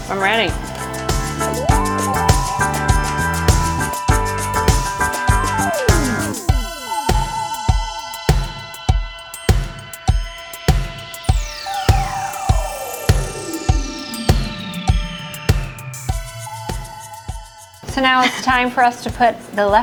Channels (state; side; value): identical; both; correlation 1.00